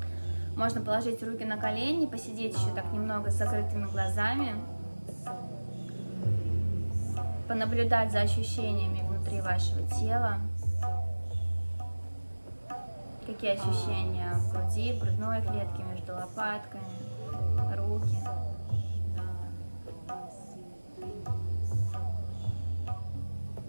Можно положить руки на колени, посидеть еще так немного с закрытыми глазами. Понаблюдать за ощущениями внутри вашего тела. Какие ощущения в груди, в грудной клетке, между лопатками, руки.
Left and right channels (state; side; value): inverted; both; correlation -1.00